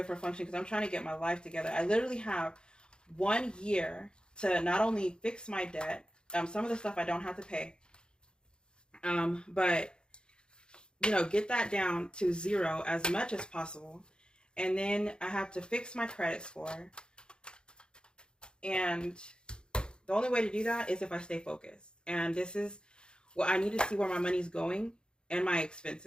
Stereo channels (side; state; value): right; late; 0.049 ms